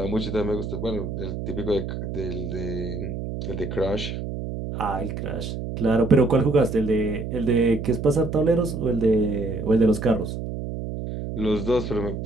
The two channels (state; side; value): noise; right; hum, 6 dB below the sound